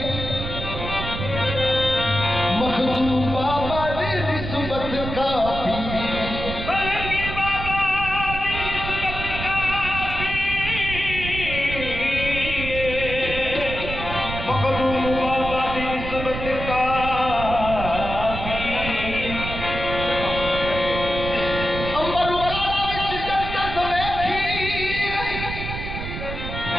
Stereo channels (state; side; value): noise; right; rumble, 6 dB below the sound